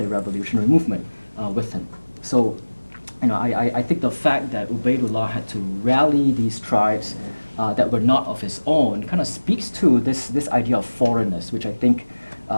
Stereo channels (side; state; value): both; inverted; correlation -1.00